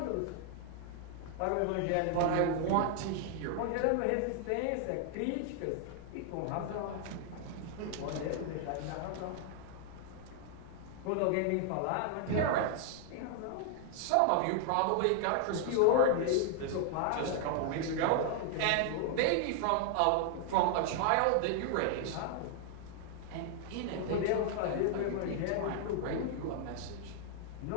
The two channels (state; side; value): different; both; correlation 0.00